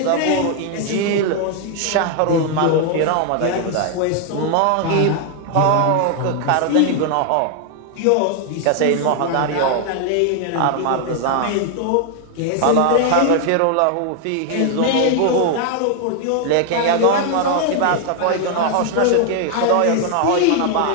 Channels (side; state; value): both; different; correlation 0.00